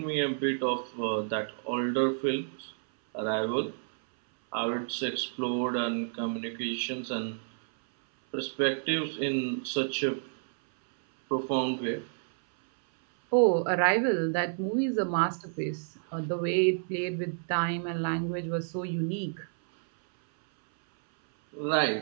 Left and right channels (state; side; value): silent; left; 58 dB below the other